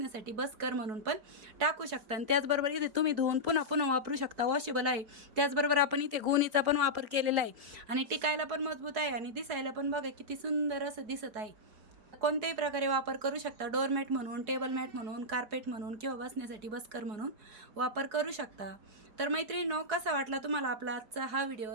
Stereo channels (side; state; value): left; late; 4.7 ms